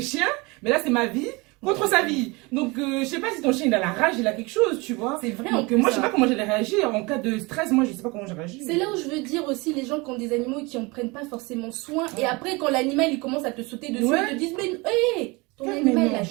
chiens, mais là, c'est ma vie contre sa vie. Donc, je sais pas si ton chien, il a la rage, il a quelque chose, tu vois. C'est vrai, en Donc, plus, moi, je sais hein. pas comment j'allais réagir. En cas de stress, moi, je sais pas comment j'allais réagir. C'est là où je veux dire aussi les gens qui ont des animaux et qui en prennent pas forcément soin. Et Ouais. après, quand l'animal il commence à te sauter dessus, Ouais. ils te disent mais hé, ton Mais animal non. là,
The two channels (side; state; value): left; quieter; 25.7 dB